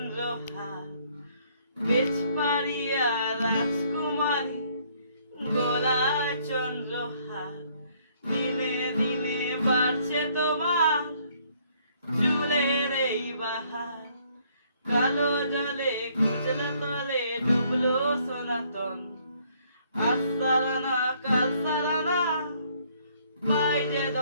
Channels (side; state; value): both; inverted; correlation -0.65